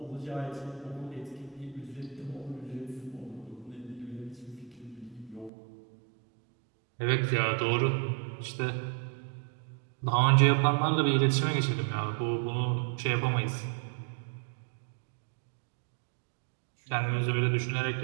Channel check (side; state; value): left; drops out; at 5.5 s